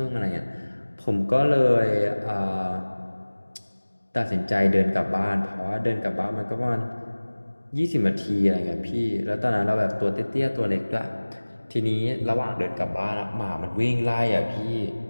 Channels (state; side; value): inverted; both; correlation -1.00